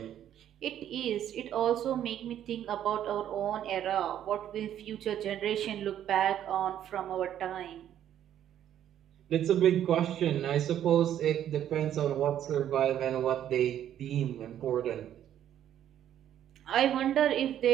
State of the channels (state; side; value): quieter; left; 10.8 dB